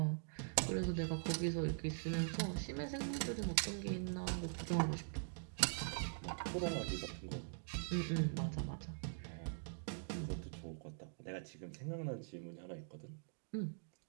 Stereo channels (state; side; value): silent; left; digital silence